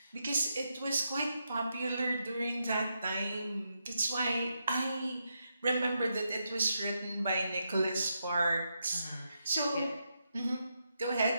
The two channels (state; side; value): inverted; both; correlation -0.83